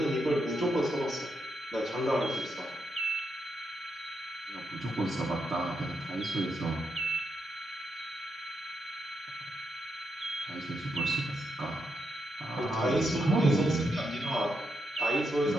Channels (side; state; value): both; normal; correlation 0.82